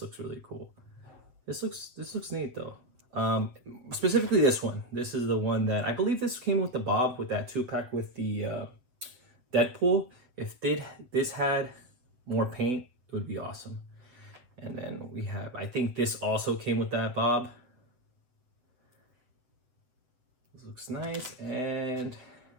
looks really cool. This looks neat though. Specifically this one. This is the one that I believe this came with the Bob, with that 2-pack with the Deadpool. If this had more paint, it would be awesome. And then we have, I think this also came with that Bob. This looks nice, and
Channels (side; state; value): left; late; 7.9 ms